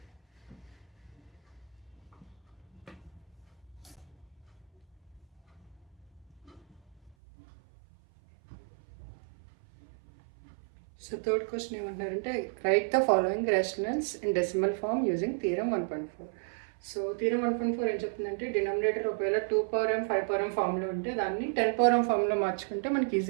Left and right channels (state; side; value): drops out; left; at 7.2 s